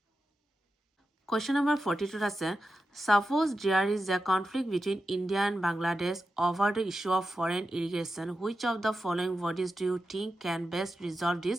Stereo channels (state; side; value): normal; both; correlation 0.90